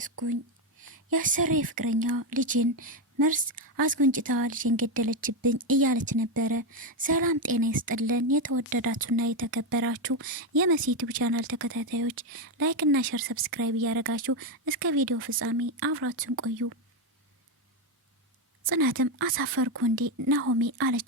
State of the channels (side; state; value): both; normal; correlation 0.08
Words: የአሰሪ ፍቅረኛ ልጅን መርስ አስጎንጭታ ልጅን ገደለችብኝ እያለች ነበረ። ሰላም ጤና ይስጥልን የተወደዳችሁና የተከበራችሁ የመሲ ዩቲዩብ ቻናል ተከታታዮች ላይክ እና ሼር ሰብስክራይብ እያደረጋችሁ እስከ ቪዲዮ ፍጻሜ አብራችሁን ቆዩ። ጽናትም አሳፈርኩ እንዴ ናሆሜ